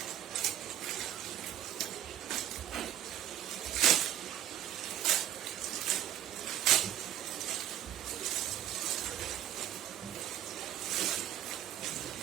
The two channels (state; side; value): quieter; left; 11.9 dB